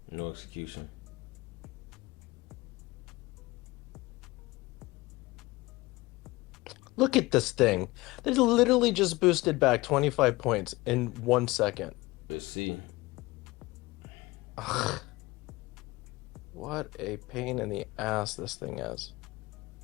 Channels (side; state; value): right; quieter; 21.0 dB